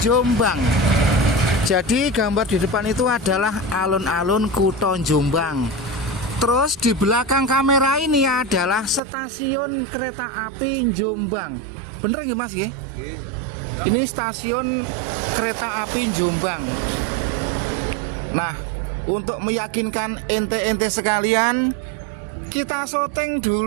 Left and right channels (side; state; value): left; drops out; at 9.0 s